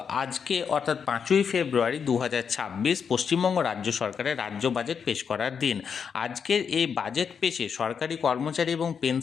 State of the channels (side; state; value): right; quieter; 6.7 dB